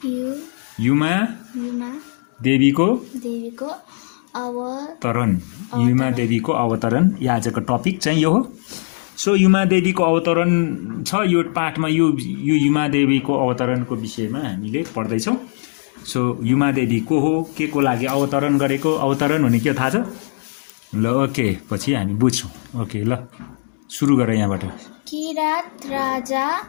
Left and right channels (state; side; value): silent; right; digital silence